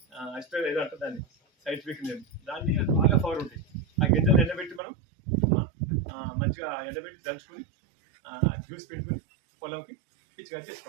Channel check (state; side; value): drops out; left; at 4.8 s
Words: అసిటేట్ ఏదో అంటారు దాన్ని, సైంటిఫిక్ నేమ్. దాన్ని బాగా పవర్ ఉంటాయి. ఆ గింజలు ఎండబెట్టి మనం మంచిగా ఎండబెట్టి దంచుకొని జ్యూస్ పెట్టుకుని పొలంకి పిచ్చిగా